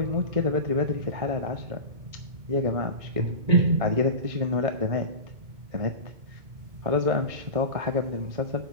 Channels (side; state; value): left; late; 2.2 ms